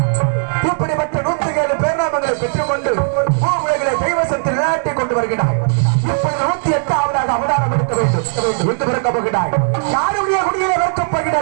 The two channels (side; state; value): left; silent; digital silence